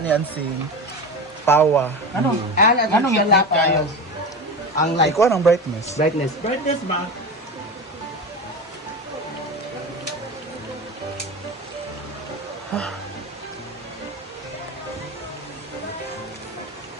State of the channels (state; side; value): normal; both; correlation 0.25